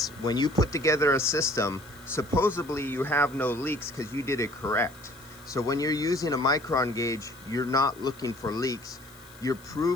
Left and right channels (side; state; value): left; noise; hiss, 24 dB below the sound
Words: when you put together a system, supposedly you have no leaks because you did it correct. So when you're using a micron gauge, you're not looking for leaks. You're